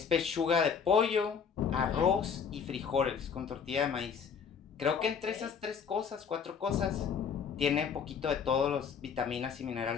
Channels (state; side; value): quieter; right; 6.6 dB